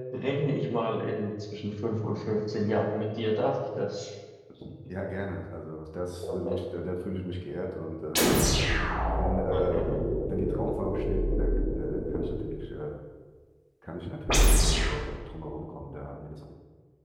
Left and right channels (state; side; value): identical; both; correlation 1.00